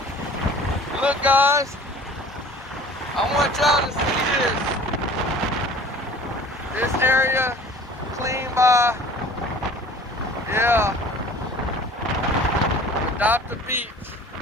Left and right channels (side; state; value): both; normal; correlation 0.46